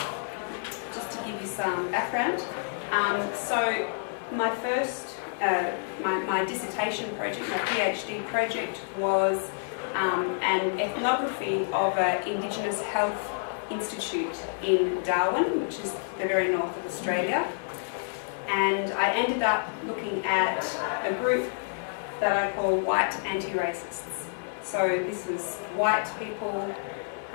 just to give you some background. So my first, my dissertation project, my PhD project was an ethnography of an Indigenous Health Institute in Darwin, which is the very north of Australia. And I ended up looking at a group that I call white anti-racists. So this was white people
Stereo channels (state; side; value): silent; right; digital silence